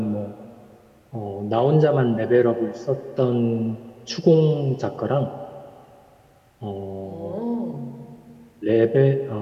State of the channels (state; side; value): identical; both; correlation 1.00